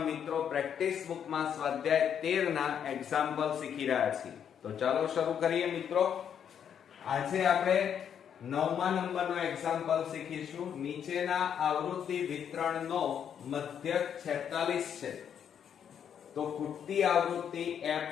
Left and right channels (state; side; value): quieter; right; 8.4 dB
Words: મિત્રો પ્રેક્ટિસ બુકમાં સ્વાધ્યાય 13 ના એક્ઝામ્પલ શીખી રહ્યા છીએ. તો ચાલો શરૂ કરીએ મિત્રો. આજે આપણે 9મા નંબરનો એક્ઝામ્પલ શીખીશું. નીચેના આવૃત્તિ વિતરણનો મધ્યક 46 છે, તો ખૂટતી આવૃત્તિ